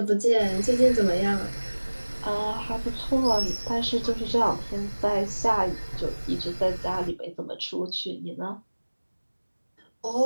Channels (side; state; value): both; inverted; correlation -1.00